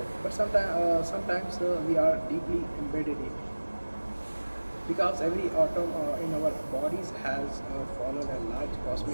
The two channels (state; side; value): inverted; both; correlation -1.00